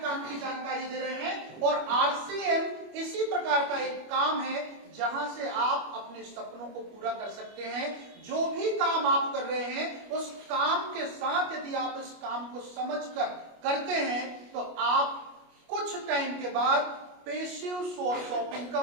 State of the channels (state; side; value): late; left; 25 ms